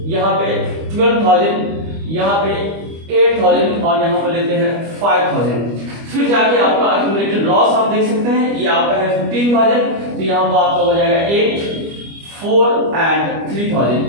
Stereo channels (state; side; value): late; left; 25 ms